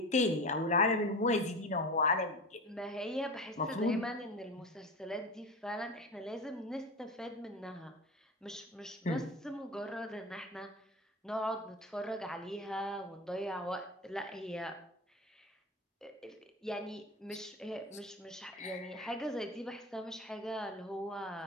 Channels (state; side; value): normal; both; correlation 0.28